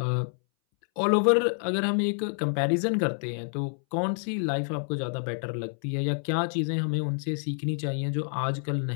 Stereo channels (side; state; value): right; silent; 59 dB below the other